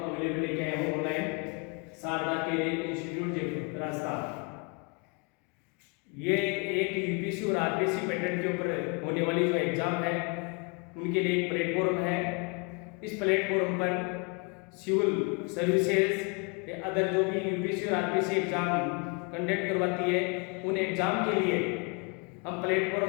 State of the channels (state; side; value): quieter; right; 32.6 dB